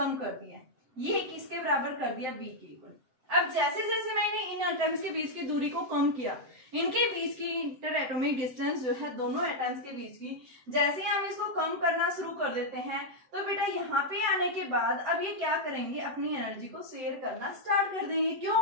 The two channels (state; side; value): late; left; 7.8 ms